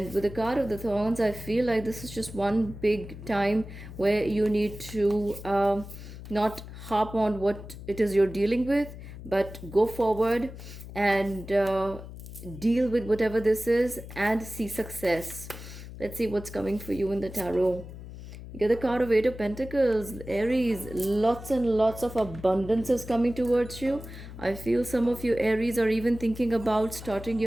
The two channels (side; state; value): left; noise; hum, 13 dB below the sound